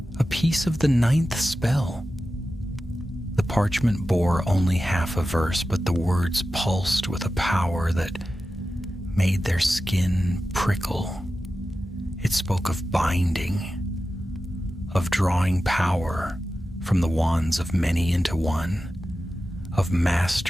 a piece of the 9th spell. The parchment bore only half a verse, but the words pulsed with a power that made their skin prickle. It spoke of binding, of drawing power from the wands of many into one, of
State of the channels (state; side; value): normal; both; correlation 0.93